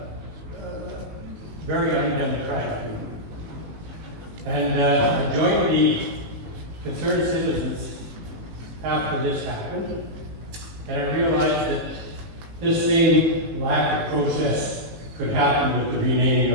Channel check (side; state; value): left; late; 18 ms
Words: very undemocratic. And I joined the concerned citizens after this happened, and I realized that this same lack of process could happen with the